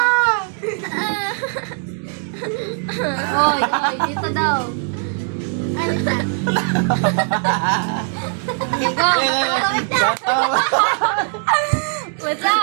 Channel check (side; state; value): left; silent; 58 dB below the other